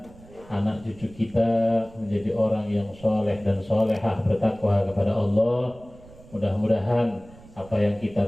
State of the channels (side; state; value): right; noise; rumble, 22 dB below the sound